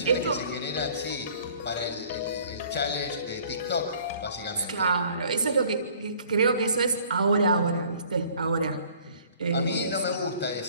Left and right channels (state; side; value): inverted; both; correlation -0.54